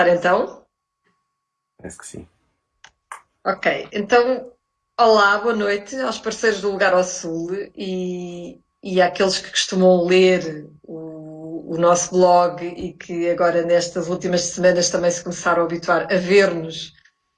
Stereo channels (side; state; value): both; identical; correlation 1.00